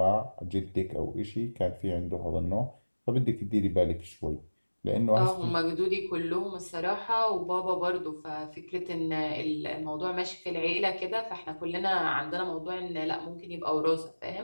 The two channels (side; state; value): both; inverted; correlation -1.00